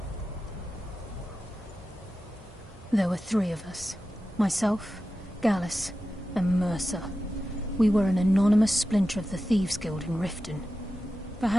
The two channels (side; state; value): both; normal; correlation 0.92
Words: There were 3 of us. Myself, Gallus, and Mercer. We were an anonymous splinter of the Thieves Guild in Riften.